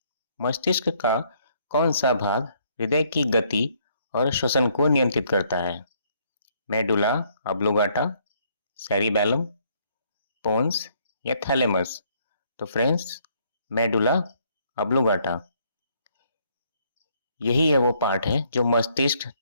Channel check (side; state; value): both; inverted; correlation -0.68